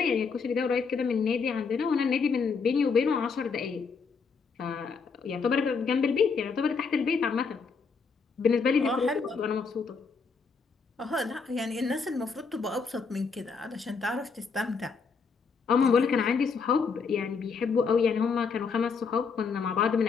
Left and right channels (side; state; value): right; quieter; 5.2 dB